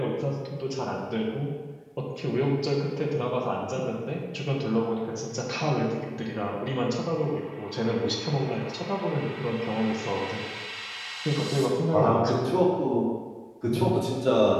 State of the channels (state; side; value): identical; both; correlation 1.00